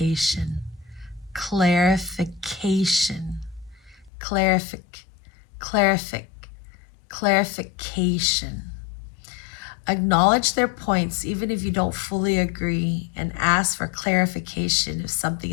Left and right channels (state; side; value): drops out; right; at 4.1 s